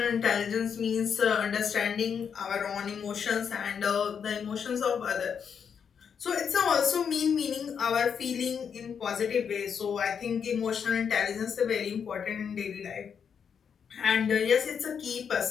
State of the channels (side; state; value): right; quieter; 7.1 dB